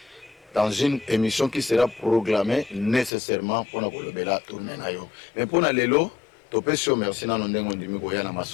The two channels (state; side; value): drops out; right; at 3.1 s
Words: Dans une émission qui sera programmée nécessairement pour nous tourner. Mais pour nous, lelo, topesio merci na ndenge ndimi ko yana